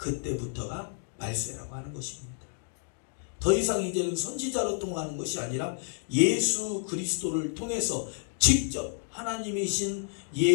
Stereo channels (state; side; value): silent; right; 55 dB below the other